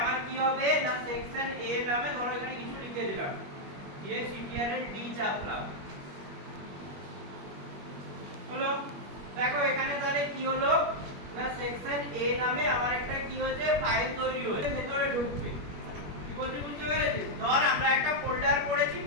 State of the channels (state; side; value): late; left; 21 ms